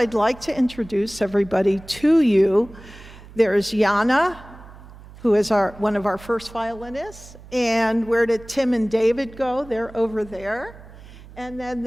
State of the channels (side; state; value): right; noise; hum, 19 dB below the sound